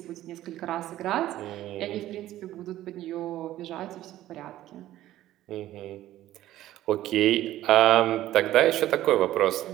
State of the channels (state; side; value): quieter; left; 14.1 dB